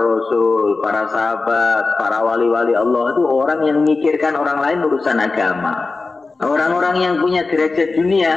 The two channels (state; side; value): quieter; right; 3.8 dB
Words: para sahabat, para wali-wali Allah itu orang yang memikirkan orang lain urusan agama. Orang-orang yang punya derajat dunia,